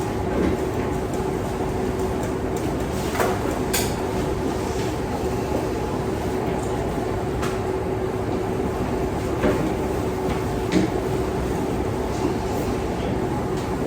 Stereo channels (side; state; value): both; identical; correlation 1.00